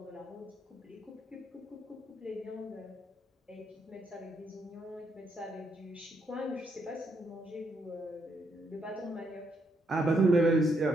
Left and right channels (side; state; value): both; normal; correlation 0.76